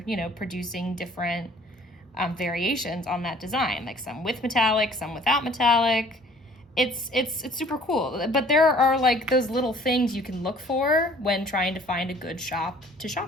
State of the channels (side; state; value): both; normal; correlation 0.54